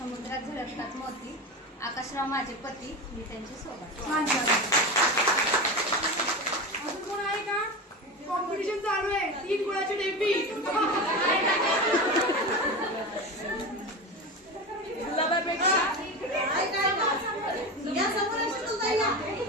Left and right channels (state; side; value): normal; both; correlation 0.24